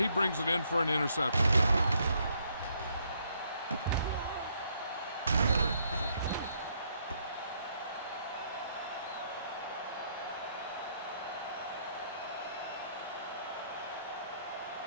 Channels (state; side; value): inverted; both; correlation -0.71